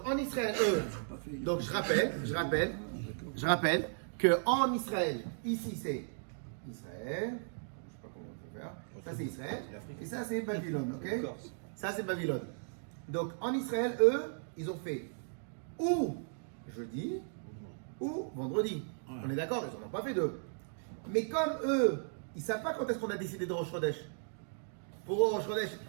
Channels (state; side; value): silent; left; digital silence